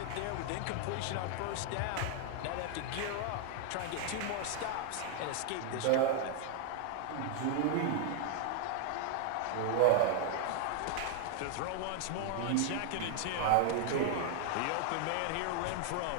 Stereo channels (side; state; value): both; different; correlation 0.00